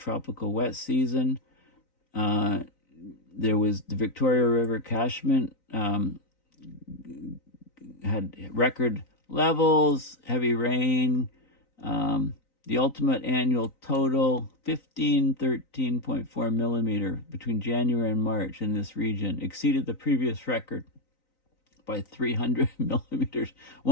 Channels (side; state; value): right; late; 3.9 ms